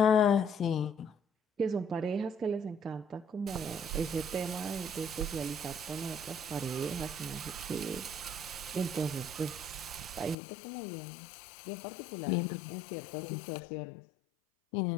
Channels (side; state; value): right; drops out; at 10.4 s